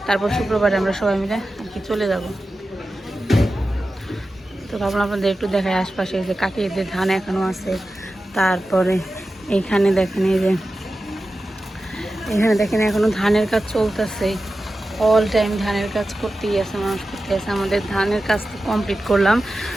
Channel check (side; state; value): both; normal; correlation 0.93